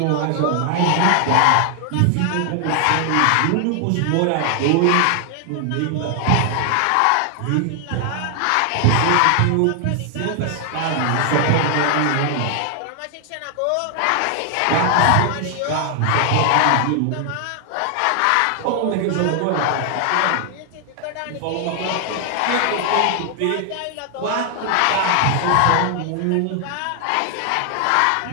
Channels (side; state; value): both; different; correlation 0.00